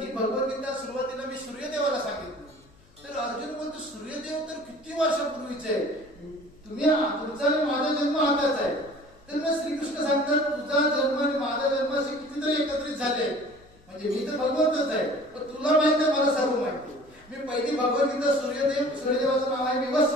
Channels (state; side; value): noise; left; hum, 28 dB below the sound